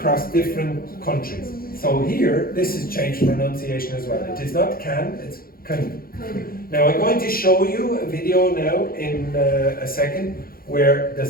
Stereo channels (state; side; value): late; right; 0.43 ms